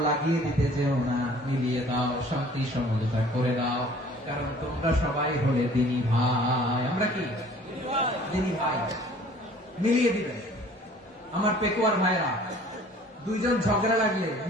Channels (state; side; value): normal; both; correlation 0.52